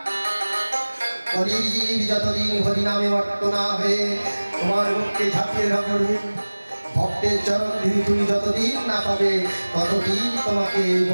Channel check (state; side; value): inverted; both; correlation -1.00